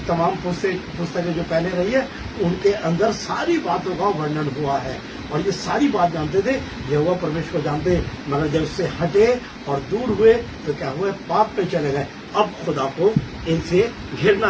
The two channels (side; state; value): both; identical; correlation 1.00